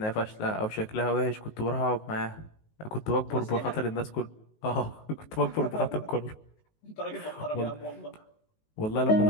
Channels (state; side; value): late; right; 19 ms